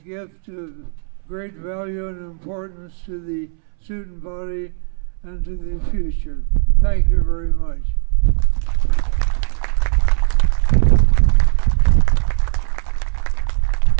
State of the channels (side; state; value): left; silent; 66 dB below the other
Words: of great value and importance to the student body and to the future. Thank you very much. I